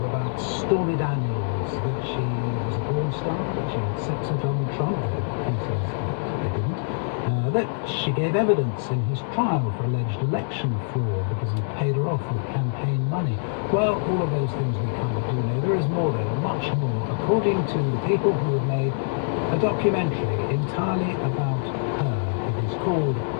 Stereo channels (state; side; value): silent; right; digital silence